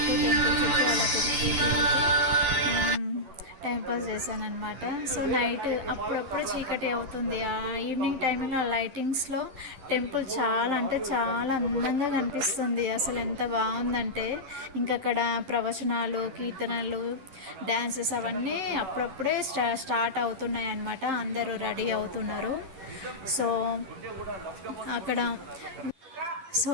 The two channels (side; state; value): left; late; 11 ms